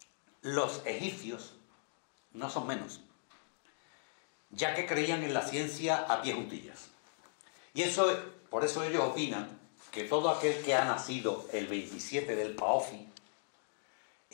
los egipcios no son menos, ya que creían en la ciencia a pie juntillas. Y por eso ellos opinan que todo aquel que ha nacido el 27 del Paofi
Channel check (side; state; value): right; silent; digital silence